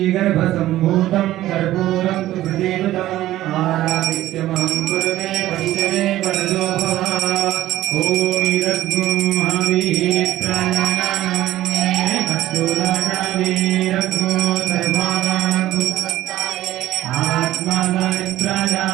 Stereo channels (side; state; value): left; quieter; 14.6 dB